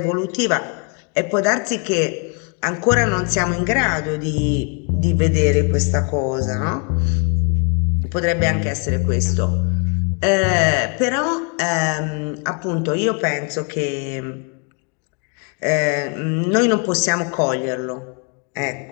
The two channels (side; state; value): right; quieter; 36.4 dB